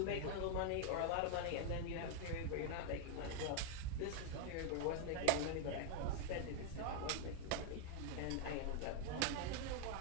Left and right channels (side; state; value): both; different; correlation 0.00